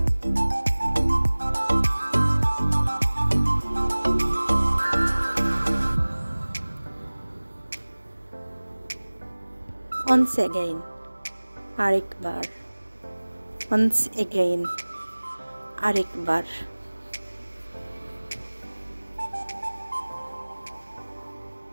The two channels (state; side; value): inverted; both; correlation -1.00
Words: once again, আরেকবার, once again, আরেকবার।